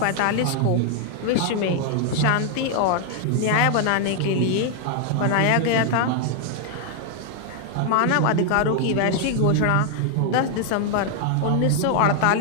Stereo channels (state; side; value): different; both; correlation 0.00